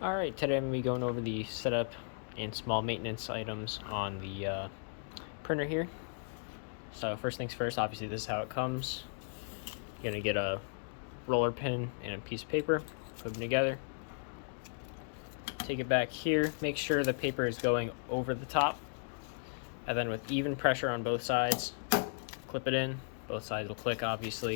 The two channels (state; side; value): silent; right; digital silence